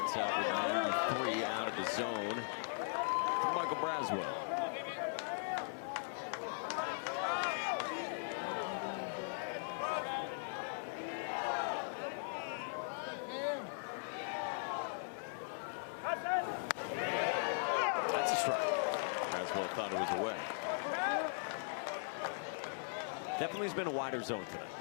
out with 93 out of the zone to Michael Braswell. That's a strike. Braswell thought it was away. Definitely has been a wider zone tonight.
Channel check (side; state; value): right; silent; 52 dB below the other